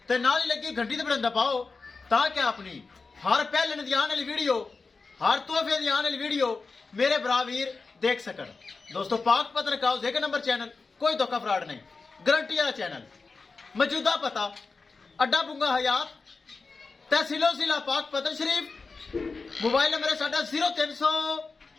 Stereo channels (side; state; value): right; quieter; 4.2 dB